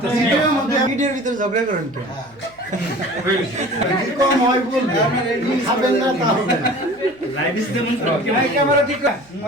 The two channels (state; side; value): noise; right; hum, 28 dB below the sound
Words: ভিডিওর ভিতরে ঝগড়া করেন কেন? ক্যামেরা ঠিক